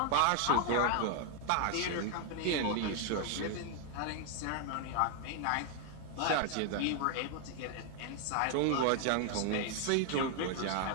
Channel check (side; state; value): both; different; correlation 0.00